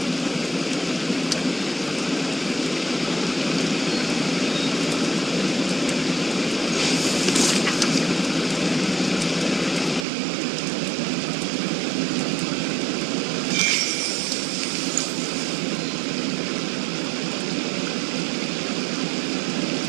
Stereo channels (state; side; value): drops out; left; at 10.1 s